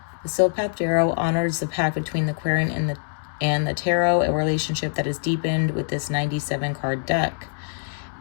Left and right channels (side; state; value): right; silent; digital silence